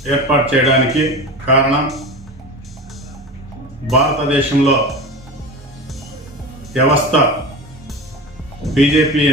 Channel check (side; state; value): both; normal; correlation 0.29